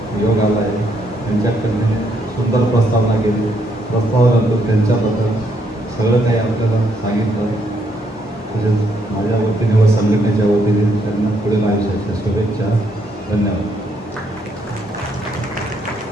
योग आला आहे, त्यांच्याकडे सुंदर प्रस्तावना केली. प्रस्तावानंतर त्यांच्याबद्दल सगळं काही आपल्याला सांगितलं. तसेच माझ्या वतीने व संघटनेच्या वतीने त्यांना पुढील आयुष्याच्या शुभेच्छा. धन्यवाद.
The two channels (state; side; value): normal; both; correlation 0.73